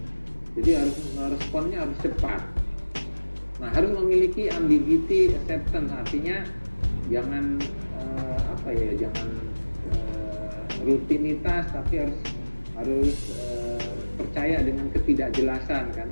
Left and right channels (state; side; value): inverted; both; correlation -1.00